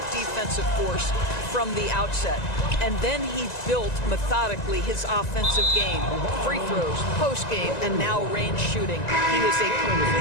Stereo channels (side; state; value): right; late; 1.9 ms